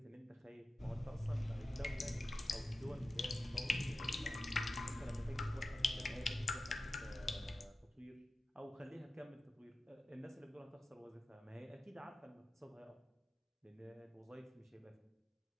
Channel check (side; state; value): both; normal; correlation 0.95